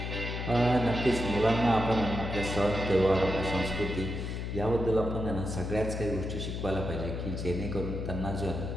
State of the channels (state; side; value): noise; left; hum, 4 dB below the sound